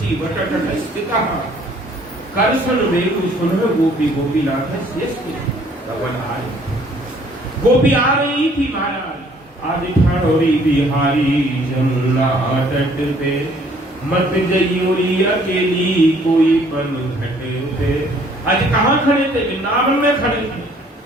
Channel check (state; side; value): normal; both; correlation 0.60